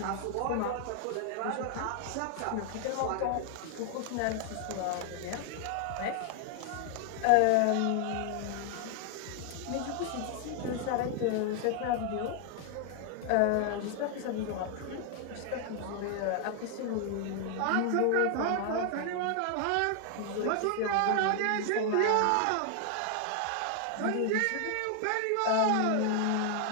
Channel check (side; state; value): both; different; correlation 0.00